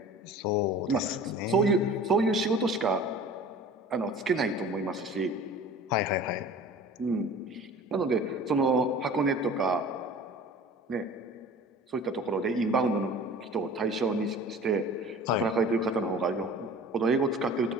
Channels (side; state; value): both; normal; correlation 0.42